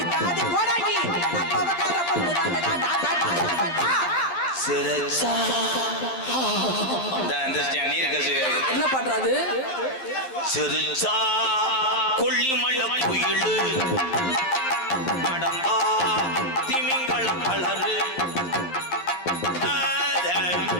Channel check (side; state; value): right; late; 11 ms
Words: போடாங்கி நான் கோவக்கார பொண்ணு தானடா. சிரச்சா நீர் கசு என்ன பண்றது? சிரிச்சா கொல்லிமல்ல குயிலு நடந்தா திமிங்கள கலரு.